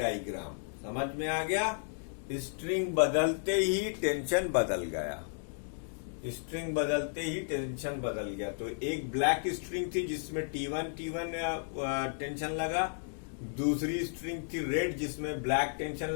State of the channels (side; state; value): right; silent; digital silence